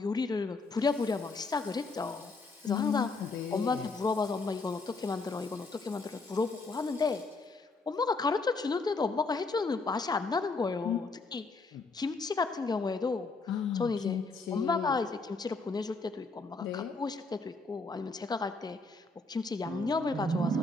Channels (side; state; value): right; quieter; 3.7 dB